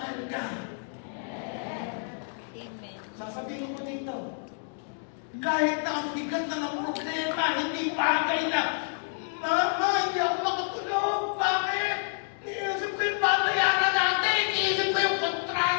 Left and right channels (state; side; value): silent; right; digital silence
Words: ka. Sasabihin ko dito, kahit na ang bigat na ng problema, hindi bagay na, Mama, hindi ako makatulog. Bakit? Iniisip ko yung babayaran natin. Iniisip ko yung